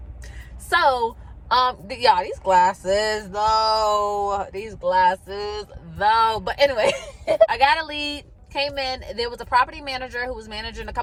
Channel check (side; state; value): both; identical; correlation 1.00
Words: So yeah, these glasses though. But anyway, I got a lead. Came in, there was a property manager who was managing a